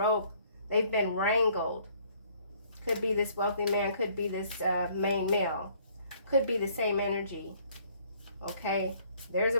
They've been wrangled. Could be this wealthy man. Could be this main male. Could be the same energy. Okay? There's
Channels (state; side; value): inverted; both; correlation -0.61